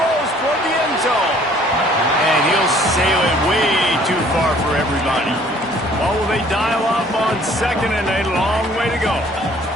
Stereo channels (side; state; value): both; normal; correlation 0.57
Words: toward the end zone. And he'll sail it way too far for everybody. Well, will they dial up on second and a long way to go?